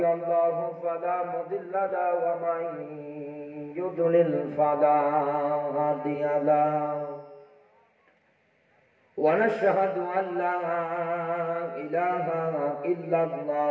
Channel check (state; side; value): identical; both; correlation 1.00